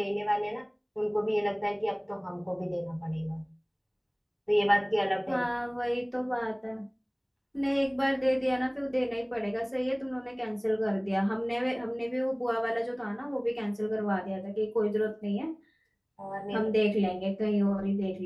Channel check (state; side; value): identical; both; correlation 1.00